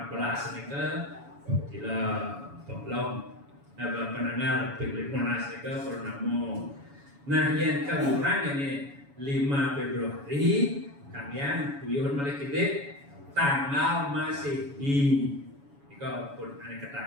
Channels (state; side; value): late; left; 7.1 ms